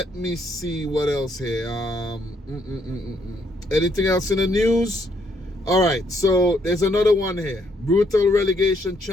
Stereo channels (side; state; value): both; normal; correlation 0.71